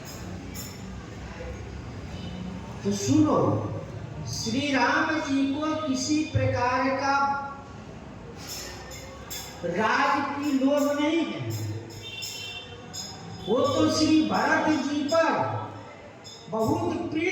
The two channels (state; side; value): identical; both; correlation 1.00